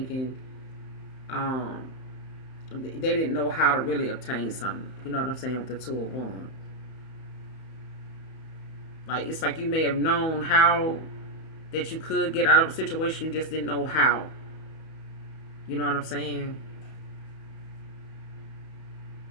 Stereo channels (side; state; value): right; late; 31 ms